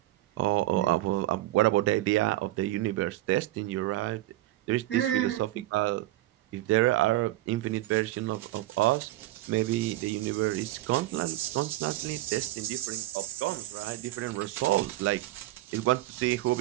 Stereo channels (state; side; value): quieter; left; 16.4 dB